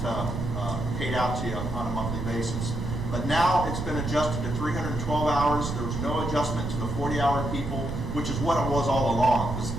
paid out to you on a monthly basis. But now it's been adjusted to 312 hours. There was no adjustment to the 40-hour people, which is what it was all along.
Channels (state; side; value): noise; right; rumble, 4 dB below the sound